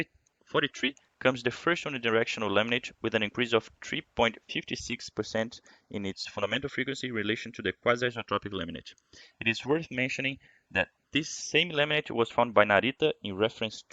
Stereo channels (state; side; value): identical; both; correlation 1.00